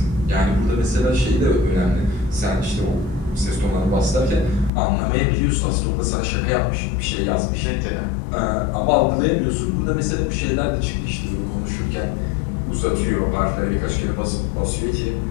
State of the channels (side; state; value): right; drops out; at 4.7 s